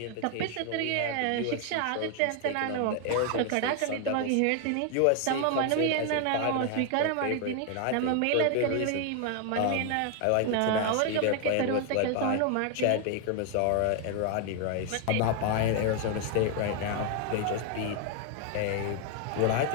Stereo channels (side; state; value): both; different; correlation 0.00